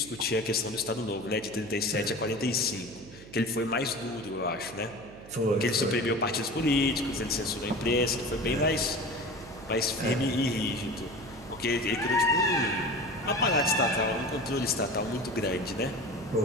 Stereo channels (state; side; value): noise; right; hum, 18 dB below the sound